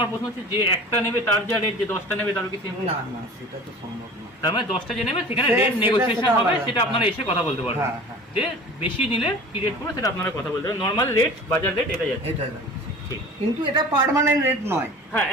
প্রশ্ন হচ্ছে যে একটা নেবে তার যা রেট, যে 10টা নেবে তারও কি সেম? না না, সেটা তো সম্ভব না। তার মানে 10টা যে নেবে সেখানে সেটা- রেট নেগোসিয়েশন সেটা হবে, আলাদা। সেটা আপনারা হ্যাঁ। এসে কথা বলতে পারবেন। হ্যাঁ, হ্যাঁ। যে বেশি নিলে কি রেট পড়বে সেটা আপনারা কথা বলতে পারবেন। নর্মাল রেট, বাজার রেট এটা যাচ্ছে। এটা না। ঠিক। কিন্তু এটা পার্মানেন্ট রেট নয়। হ্যাঁ,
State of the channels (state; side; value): normal; both; correlation 0.41